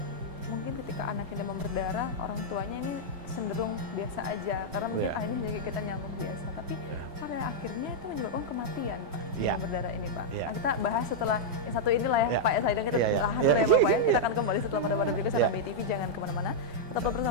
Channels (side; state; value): left; late; 5.2 ms